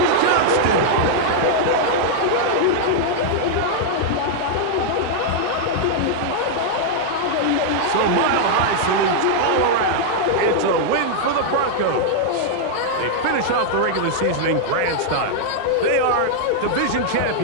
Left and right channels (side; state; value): both; different; correlation -0.01